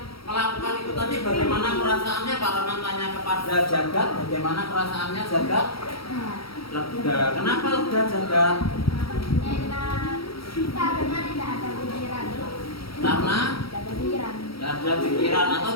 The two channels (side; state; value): right; late; 0.75 ms